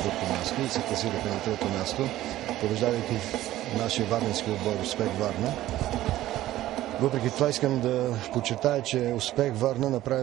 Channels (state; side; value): quieter; left; 14.7 dB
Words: място и се класираха на трето място, побеждавайки нашия варненски отбор Успех Варна. Въпреки това искам да подчертая, че Успех Варна